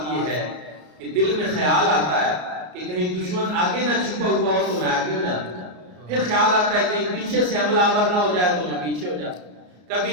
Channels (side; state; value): left; late; 33 ms